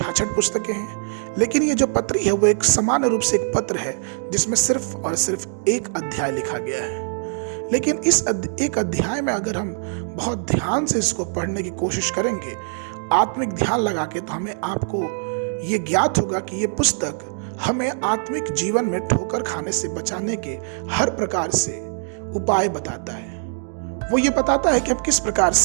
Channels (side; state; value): left; silent; digital silence